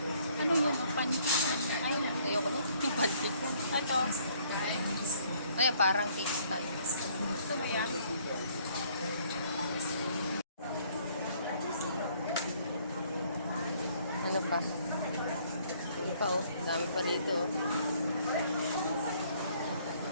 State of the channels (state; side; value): inverted; both; correlation -0.63